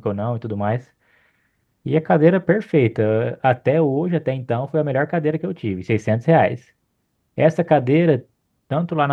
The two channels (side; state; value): both; identical; correlation 1.00